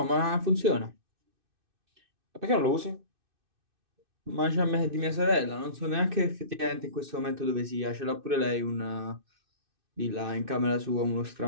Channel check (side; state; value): left; late; 2.6 ms